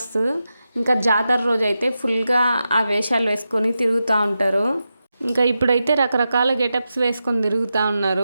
ఇంకా జాతర రోజు అయితే ఫుల్గా ఆ వేషాలు వేసుకొని తిరుగుతూ ఉంటారు. ఇంకా ఇప్పుడైతే రకరకాల గెటప్స్ వేసుకొని తిరుగుతూ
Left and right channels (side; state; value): both; inverted; correlation -0.90